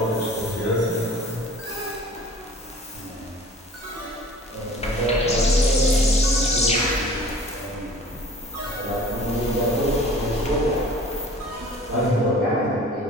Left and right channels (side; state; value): both; normal; correlation 0.46